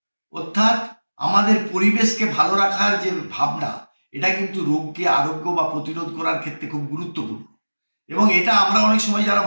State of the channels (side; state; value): both; inverted; correlation -1.00